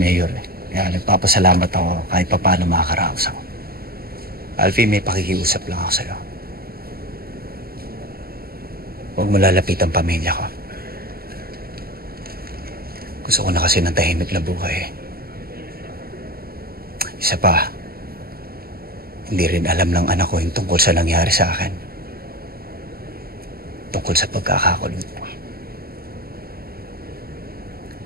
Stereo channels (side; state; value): left; late; 0.44 ms